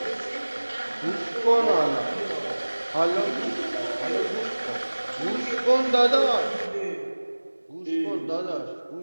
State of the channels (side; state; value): both; inverted; correlation -1.00